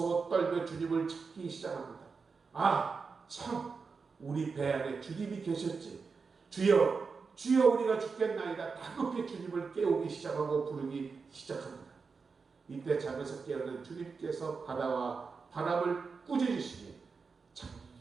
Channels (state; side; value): quieter; left; 4.9 dB